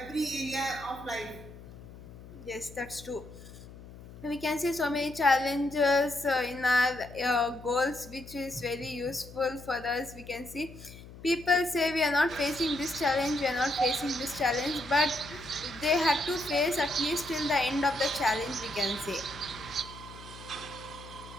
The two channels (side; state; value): left; noise; hum, 17 dB below the sound